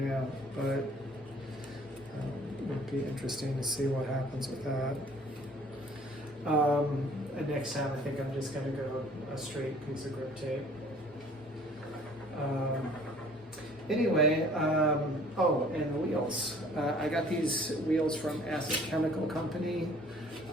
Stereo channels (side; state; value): both; normal; correlation 0.54